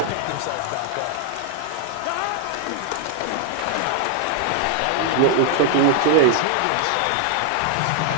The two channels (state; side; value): different; both; correlation 0.00